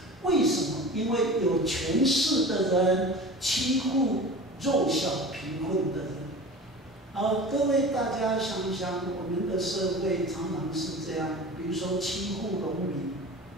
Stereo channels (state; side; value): normal; both; correlation 0.36